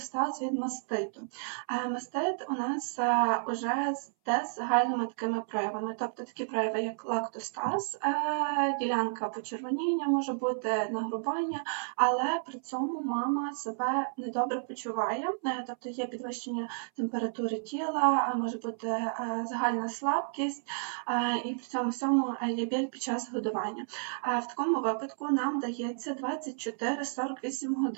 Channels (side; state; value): left; silent; 57 dB below the other